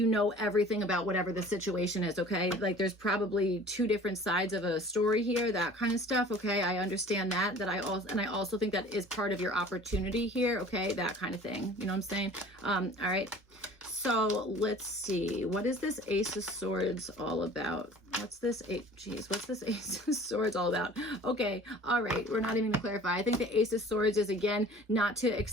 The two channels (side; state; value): both; normal; correlation 0.46